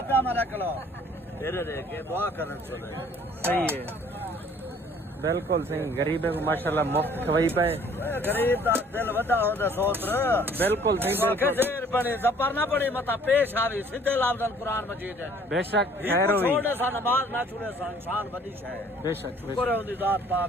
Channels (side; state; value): both; normal; correlation 0.56